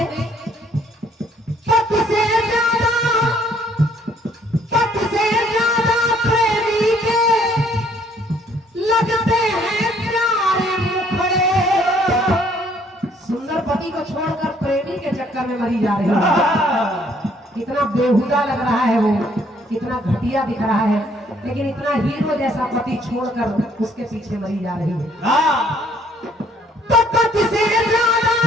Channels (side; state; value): both; normal; correlation 0.63